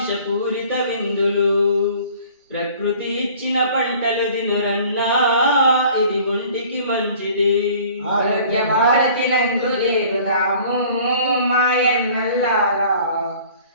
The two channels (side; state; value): both; inverted; correlation -0.50